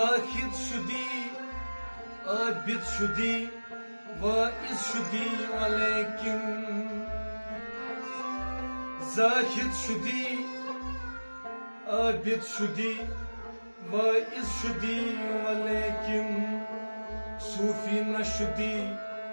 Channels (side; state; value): both; inverted; correlation -1.00